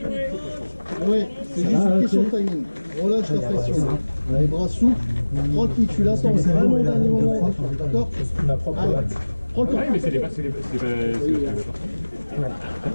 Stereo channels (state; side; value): inverted; both; correlation -1.00